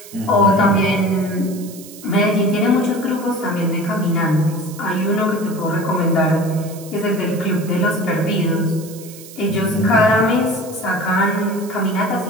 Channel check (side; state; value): right; noise; hiss, 17 dB below the sound